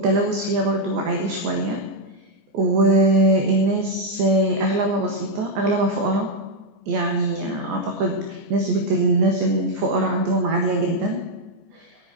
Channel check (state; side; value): late; left; 14 ms